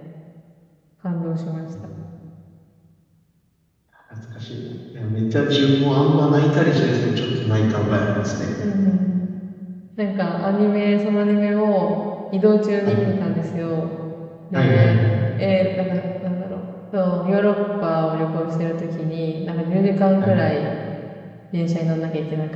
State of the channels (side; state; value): both; identical; correlation 1.00